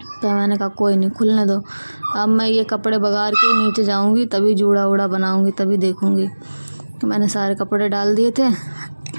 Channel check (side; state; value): both; inverted; correlation -1.00